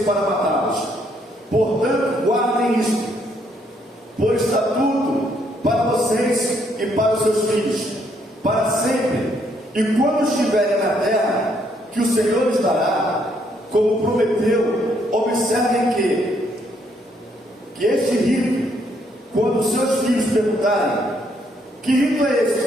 para matá-los. Portanto, guardem isto, por estatuto para vocês e para os seus filhos, para sempre. E quando estiverem na terra que o Senhor lhes dará, como prometeu, observem que este rito, quando os seus filhos perguntarem: que rito é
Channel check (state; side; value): normal; both; correlation 0.71